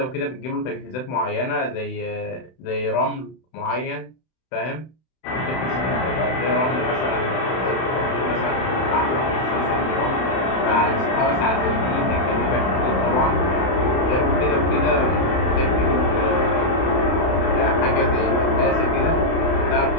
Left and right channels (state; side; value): late; right; 31 ms